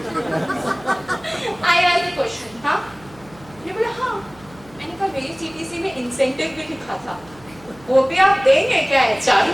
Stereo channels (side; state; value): right; noise; hum, 24 dB below the sound